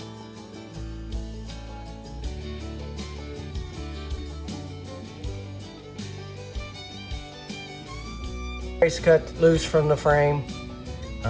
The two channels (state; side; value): identical; both; correlation 1.00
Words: Brace cut loose from the frame.